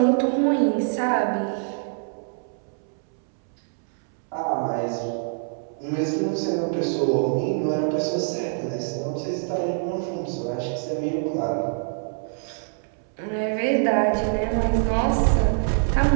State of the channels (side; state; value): left; silent; 62 dB below the other